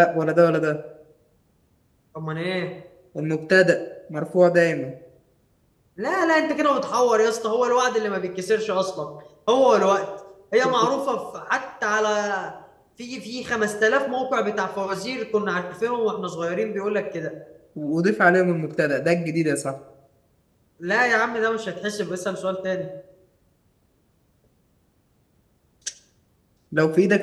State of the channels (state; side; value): identical; both; correlation 1.00